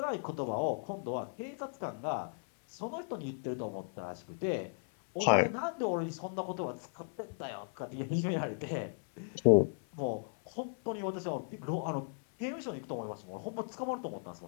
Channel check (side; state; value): right; silent; 54 dB below the other